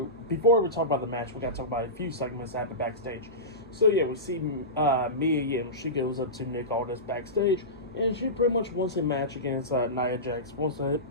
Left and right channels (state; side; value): normal; both; correlation -0.20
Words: before we talk about the match, we got to talk about a few segments that happened backstage. So yeah, we see Mia Yim. She goes up to Nick Aldis backstage, and she pretty much wants a match against Nia Jax. Wants to